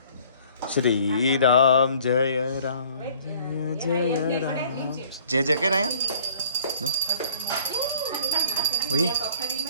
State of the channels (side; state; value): both; inverted; correlation -0.54